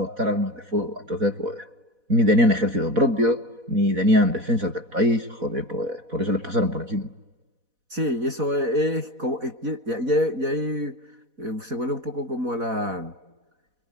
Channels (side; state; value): left; late; 4.1 ms